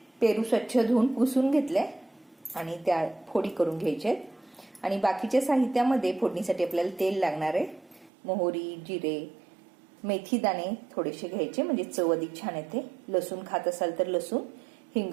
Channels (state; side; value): drops out; left; at 8.1 s